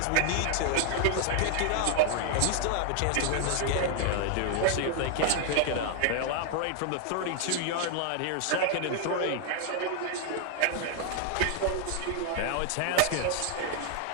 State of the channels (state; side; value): different; both; correlation 0.00